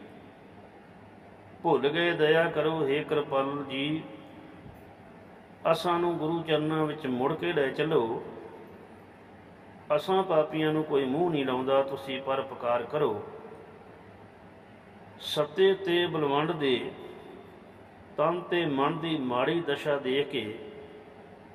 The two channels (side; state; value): both; identical; correlation 1.00